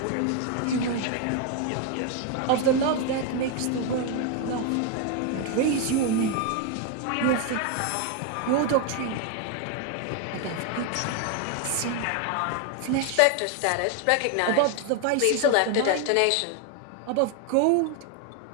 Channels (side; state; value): both; different; correlation 0.01